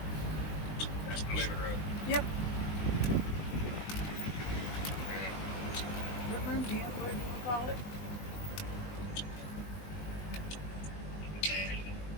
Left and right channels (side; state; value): right; late; 19 ms